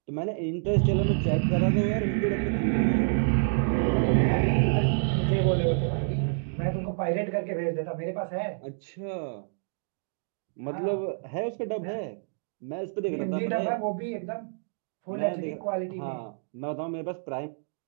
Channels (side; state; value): left; silent; digital silence